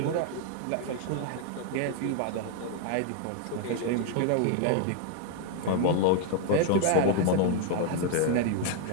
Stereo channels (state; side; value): different; both; correlation 0.00